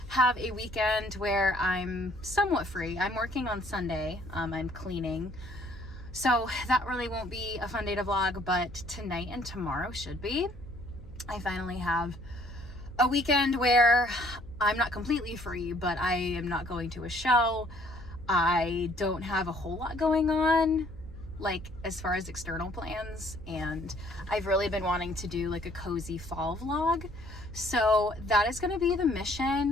have a weekend where I'm somewhat free. I'm working on Sunday, I'm cleaning. So that really won't be a fun day to vlog, but tonight and tomorrow should be. I finally have a weekend where I'm not completely free, but I am not going to a show. I don't have a whole lot going on, like as far as external plans, and I've really been wanting to do like a cozy fall vlog. So that is gonna be the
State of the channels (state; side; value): noise; left; hum, 20 dB below the sound